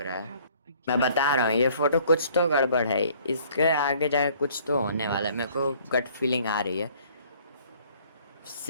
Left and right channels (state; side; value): inverted; both; correlation -0.58